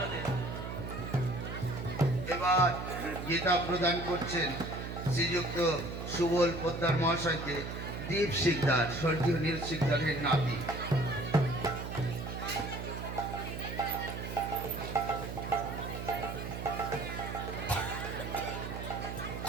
এবার গীতা প্রদান করছেন শ্রীযুক্ত সুবল পোদ্দার মহাশয়কে দীপ শিকদার, স্বর্গীয় নীল শিকদারের নাতি।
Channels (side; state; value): right; noise; hum, 6 dB below the sound